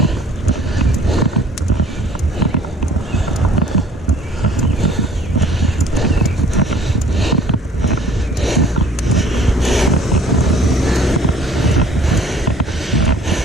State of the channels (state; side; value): normal; both; correlation 0.53